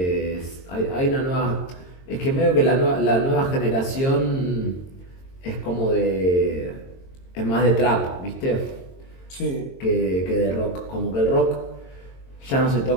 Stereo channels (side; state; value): right; late; 22 ms